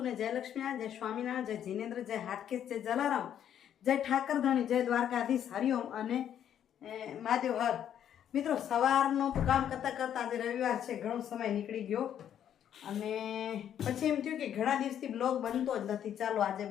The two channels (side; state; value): right; quieter; 9.8 dB